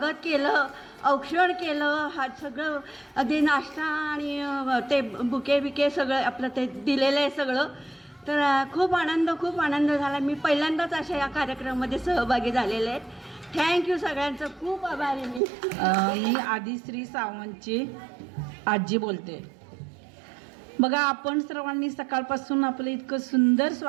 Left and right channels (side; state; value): left; drops out; at 15.4 s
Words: केलं, औक्षण केलं. हा सगळं अगदी नाश्ता आणि ते बुके बिके सगळं आपलं ते दिलेलं आहे सगळं. तर खूप आनंद झाला. मी पहिल्यांदाच अशा या कार्यक्रमामध्ये सहभागी झालेले आहेत. थँक्यू सगळ्यांचं, खूप आभारी मी. मी आदिश्री सावंतची आजी बोलते. बघा, आपण सर्वांनी सकाळपासून आपलं इतकं सुंदर